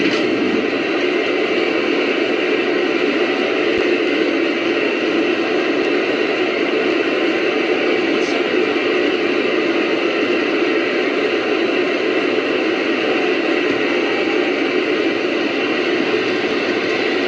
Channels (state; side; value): identical; both; correlation 1.00